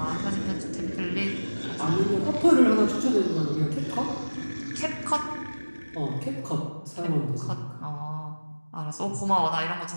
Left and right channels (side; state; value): both; inverted; correlation -1.00